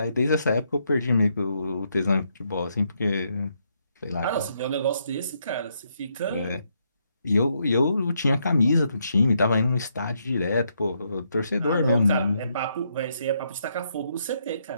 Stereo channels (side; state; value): both; inverted; correlation -0.77